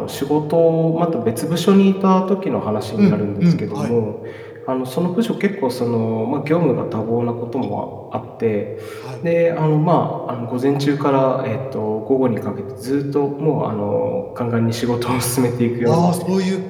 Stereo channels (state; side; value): identical; both; correlation 1.00